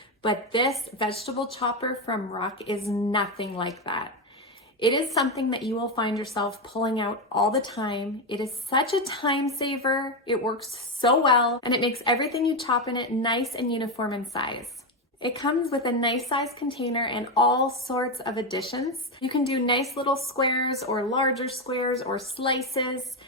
but this vegetable chopper from RuK is nothing like that. It is something that you will find yourself pulling out all the time. It is such a time saver. It works so well, and it makes everything you chop in it nice and uniform in size. It comes with a nice size container and all sorts of additions. You can do nice little squares or larger squares or slices.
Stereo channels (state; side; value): normal; both; correlation 0.10